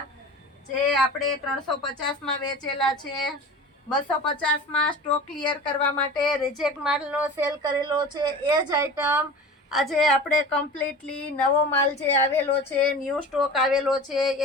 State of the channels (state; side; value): normal; both; correlation 0.36